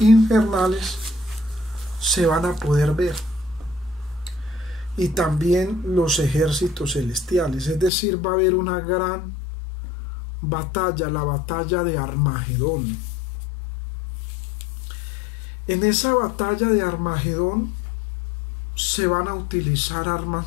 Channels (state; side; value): drops out; right; at 7.9 s